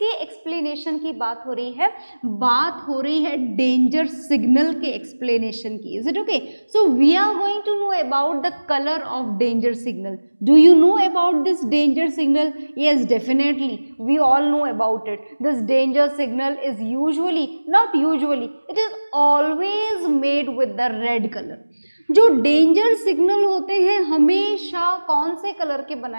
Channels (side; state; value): both; inverted; correlation -1.00